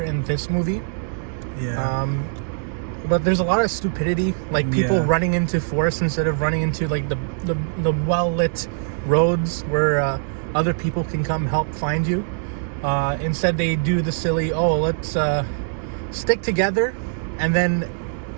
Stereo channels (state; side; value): silent; left; digital silence